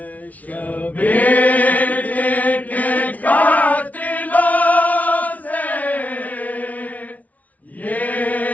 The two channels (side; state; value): right; late; 0.072 ms